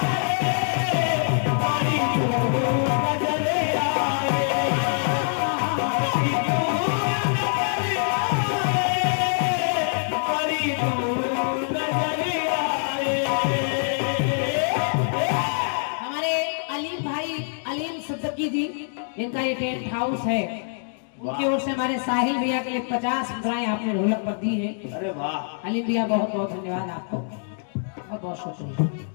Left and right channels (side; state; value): right; silent; digital silence